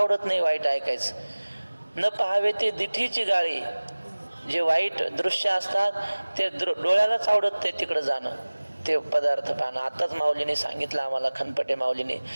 नाही वाईट ऐकायचं. न पहावे ते दिठीची गाळी, जे वाईट दृश्य असतात ते डोळ्यालाच आवडत नाही तिकडं जाणं, ते पदार्थ पाहणं. आताच माऊलीने सांगितलं आम्हाला, खनपटे माऊलीने,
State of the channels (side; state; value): both; inverted; correlation -1.00